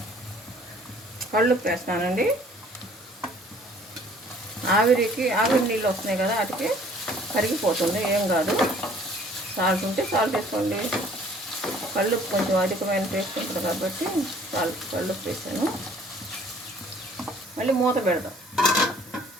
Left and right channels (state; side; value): normal; both; correlation 0.55